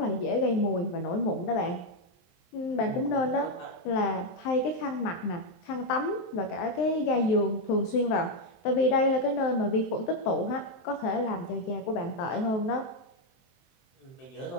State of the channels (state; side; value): late; right; 23 ms